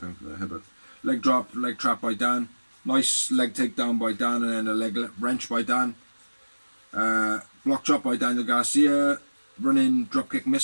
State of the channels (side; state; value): both; inverted; correlation -1.00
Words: Leg drop, leg trap by Dan. Nice leg takedown by Dan, and then a leg wrench by Dan. Block drop by Daniel Garcia. Running dropkick